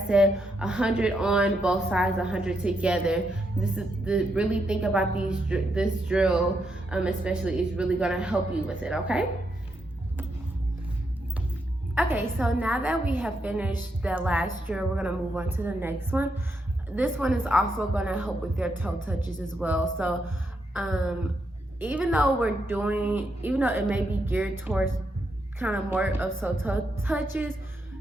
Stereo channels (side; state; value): both; normal; correlation 0.81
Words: said, 100 on both sides, 100 together. Really think about this drill, especially is really gonna help you with it. Okay. Okay, so now that we have finished the last drill, we're gonna move on to the next one. This one is also gonna help with your toe touches as well. So even though it may be geared towards kind of more of toe touches,